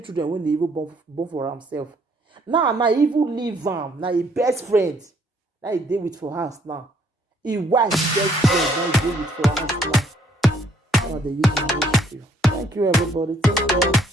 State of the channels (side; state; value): both; normal; correlation 0.66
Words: children when they even born for himself. Now, even leave him. Now, his best friend. Now, he deal with for house now. His wife's best friend. Now, he deal with for house now. Now, they use my issue. Thank you, everybody. Take care.